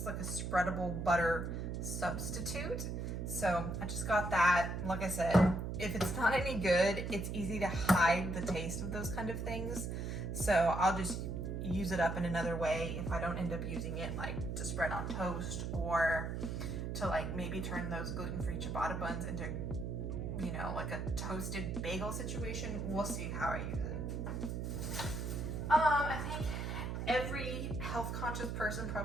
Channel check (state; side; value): noise; right; hum, 3 dB below the sound